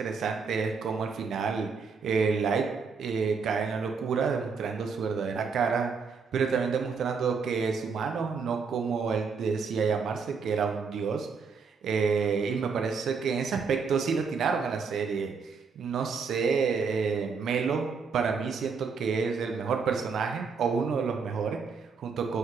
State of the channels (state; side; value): quieter; left; 5.4 dB